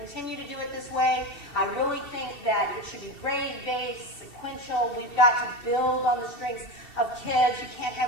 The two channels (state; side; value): late; right; 2.7 ms